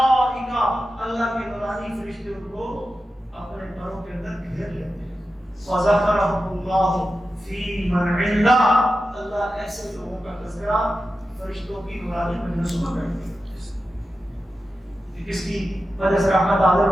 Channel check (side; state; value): both; normal; correlation 0.92